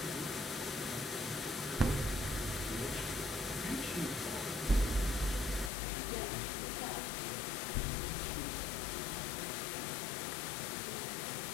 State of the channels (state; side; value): drops out; right; at 5.7 s